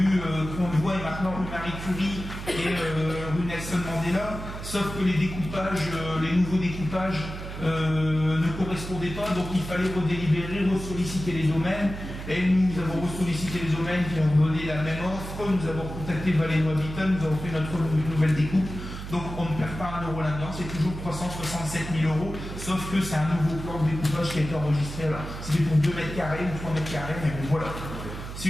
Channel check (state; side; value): noise; right; hum, 9 dB below the sound